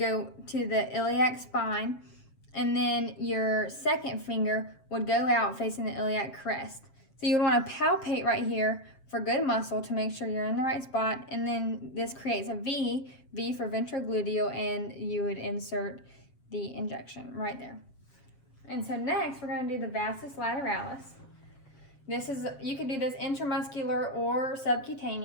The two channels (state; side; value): late; right; 7.5 ms